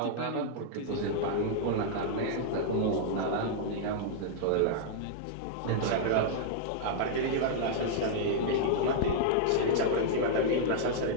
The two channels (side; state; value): both; different; correlation -0.01